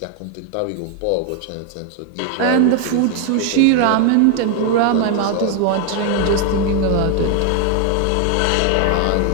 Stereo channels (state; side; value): different; both; correlation 0.01